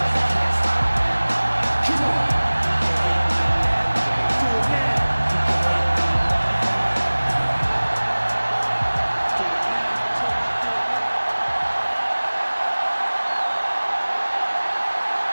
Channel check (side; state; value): both; inverted; correlation -1.00